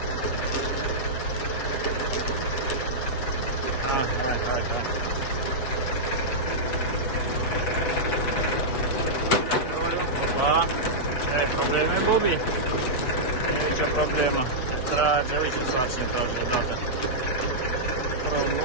Hai. Opa. Ai probleme, Bobby? Nu e nicio problemă. Se trage, uite ce sarcină trage odată.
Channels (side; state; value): right; late; 8.1 ms